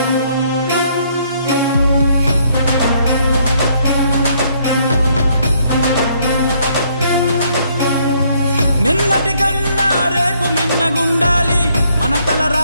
నిన్నటి కన్నా రేపు మిన్నగుండాలి మన తల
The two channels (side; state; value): both; inverted; correlation -0.68